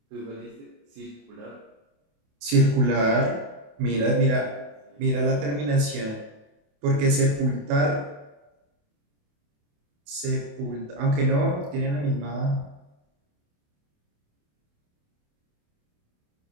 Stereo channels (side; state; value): left; late; 28 ms